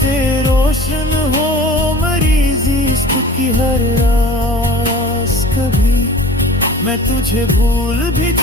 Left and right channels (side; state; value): both; normal; correlation 0.43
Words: रोशन हो मेरी जिस्म की हर रास कभी। मैं तुझे भूल भी